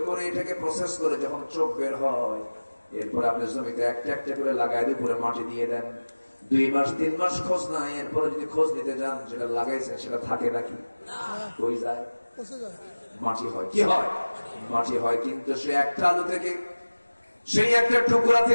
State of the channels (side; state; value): both; inverted; correlation -1.00